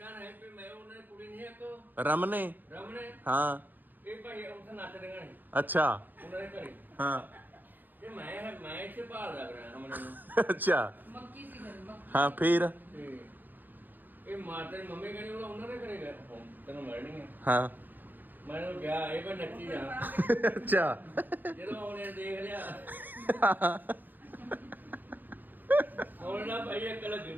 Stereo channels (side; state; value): left; late; 0.087 ms